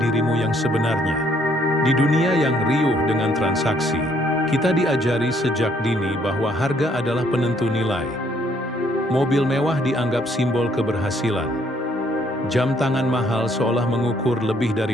dirimu yang sebenarnya. Di dunia yang riuh dengan transaksi, kita diajari sejak dini bahwa harga adalah penentu nilai. Mobil mewah dianggap simbol keberhasilan. Jam tangan mahal seolah mengukur lebih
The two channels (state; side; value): normal; both; correlation 0.67